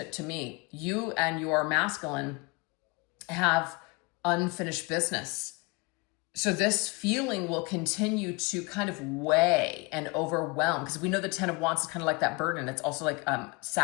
me. You and your masculine have unfinished business. So this feeling will continue to kind of weigh and overwhelm, because we know the Ten of Wands is kind of like that burden. It's also like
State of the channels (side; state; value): right; quieter; 27.7 dB